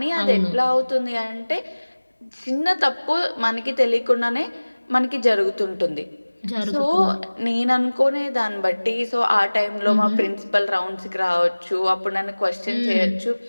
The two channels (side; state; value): both; inverted; correlation -1.00